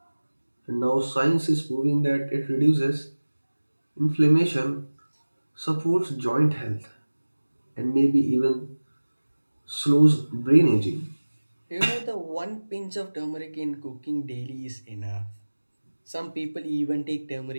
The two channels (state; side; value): inverted; both; correlation -1.00